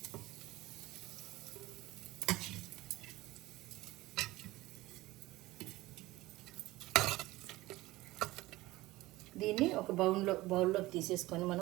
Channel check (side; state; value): left; quieter; 18.7 dB